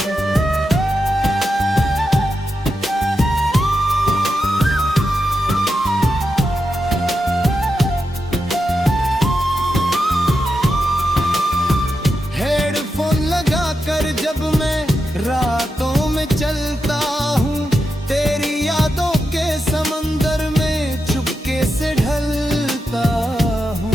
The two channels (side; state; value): both; normal; correlation 0.88